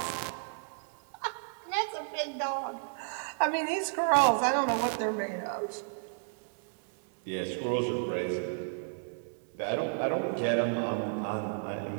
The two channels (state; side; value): silent; left; 56 dB below the other